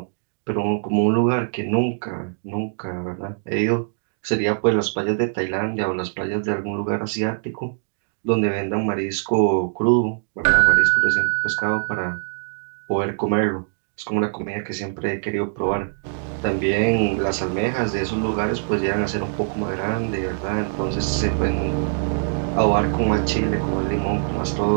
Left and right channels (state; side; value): silent; left; digital silence